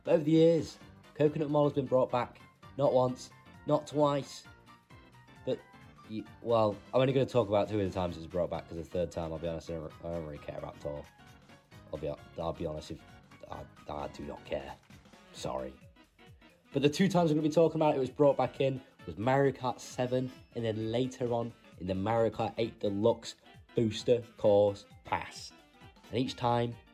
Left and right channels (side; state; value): both; identical; correlation 1.00